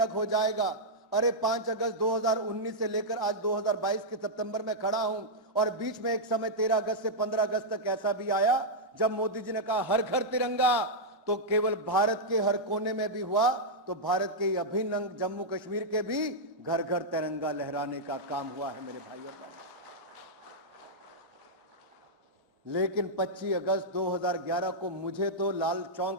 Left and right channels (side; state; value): both; normal; correlation -0.06